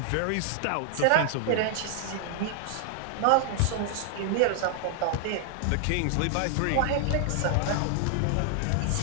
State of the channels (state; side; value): different; both; correlation 0.00